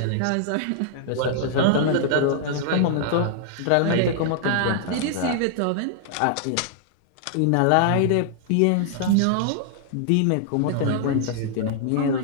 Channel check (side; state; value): both; different; correlation -0.01